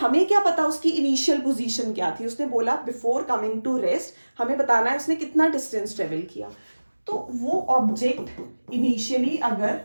क्या पता उसकी इनिशियल पोजीशन क्या थी. उसने बोला बिफोर कमिंग टू रेस्ट, हमें बताना है उसने कितना डिस्टेंस ट्रेवल किया. तो वो ऑब्जेक्ट इनिशियली अगर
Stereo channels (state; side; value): inverted; both; correlation -1.00